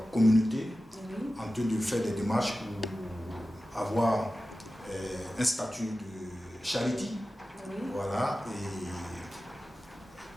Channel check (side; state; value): both; normal; correlation 0.95